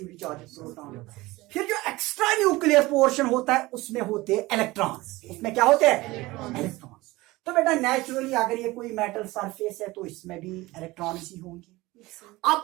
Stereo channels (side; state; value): left; quieter; 20.2 dB